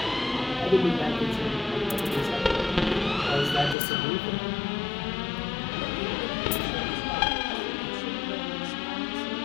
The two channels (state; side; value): drops out; right; at 3.8 s